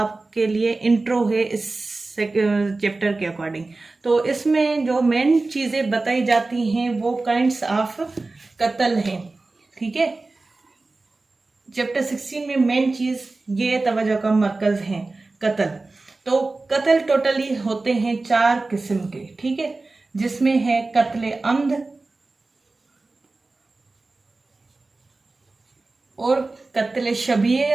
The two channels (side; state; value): left; quieter; 3.4 dB